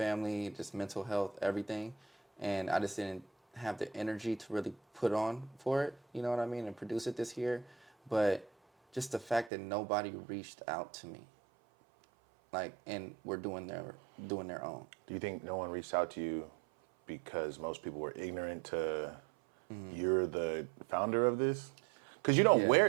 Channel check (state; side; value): drops out; left; at 9.5 s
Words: just mental health, everything, and I just didn't have the energy to really put on for it. You know what I mean? And produce it this year, but just the fact that nobody reached out to me, like, and we're doing their own. Do you think no one reached out to you because most people were ignorant to you're the founder of this? Because you don't